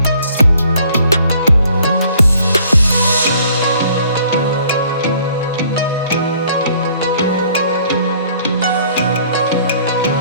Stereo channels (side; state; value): both; inverted; correlation -0.58